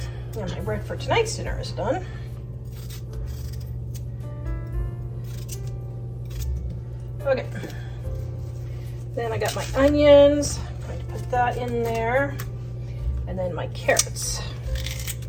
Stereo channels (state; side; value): identical; both; correlation 1.00